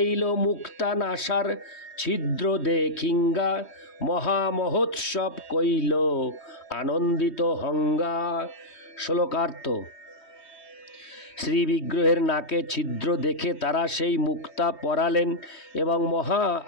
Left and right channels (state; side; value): late; right; 3.2 ms